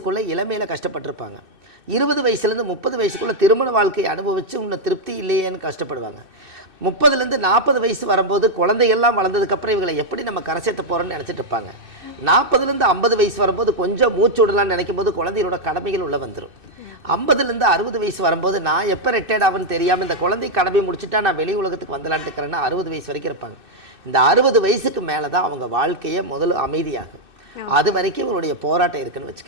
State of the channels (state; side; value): late; left; 2.6 ms